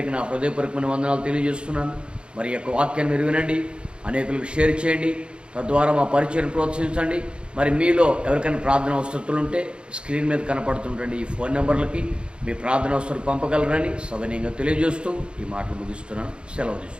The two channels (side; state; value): left; late; 0.055 ms